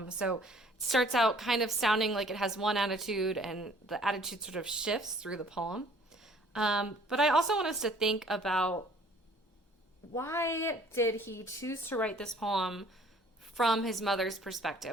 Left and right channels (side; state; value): both; normal; correlation 0.55